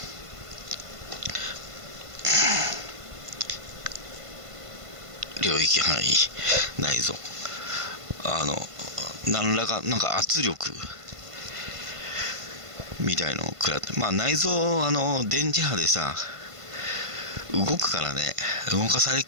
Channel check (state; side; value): late; left; 1.5 ms